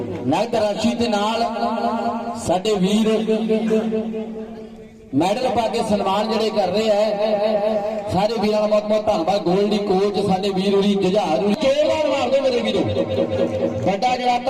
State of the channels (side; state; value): both; identical; correlation 1.00